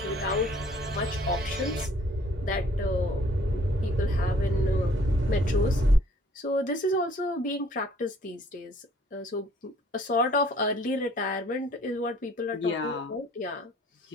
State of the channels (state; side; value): normal; both; correlation 0.58